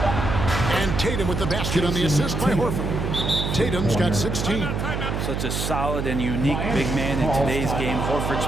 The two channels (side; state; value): right; noise; hum, 2 dB below the sound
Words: And Tatum with the basket on the assist by Horford. Tatum's got 16. Such a solid and unique big man in today's game. Horford's